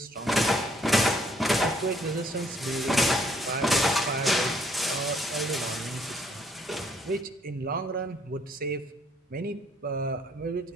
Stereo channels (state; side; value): normal; both; correlation 0.66